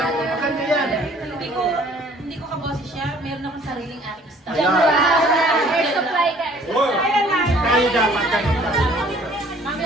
woman. Maganda yan. Hindi ko kaboses siya. Meron akong sariling acting style. Air supply ka. Kaya dapat ganun lang.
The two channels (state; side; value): normal; both; correlation 0.56